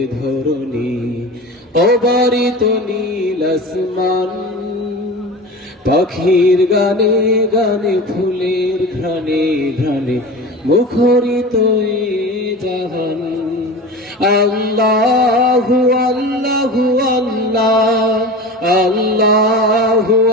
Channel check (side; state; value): both; normal; correlation 0.32